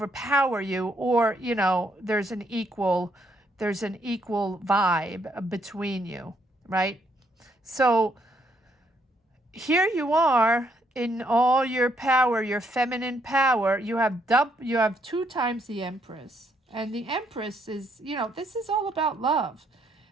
you, or, there's an equal vibe between you, right? So here you are in all your power, your feminine power. You have 2 times the Empress. And the Empress is, this is all about love.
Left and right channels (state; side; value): normal; both; correlation 0.73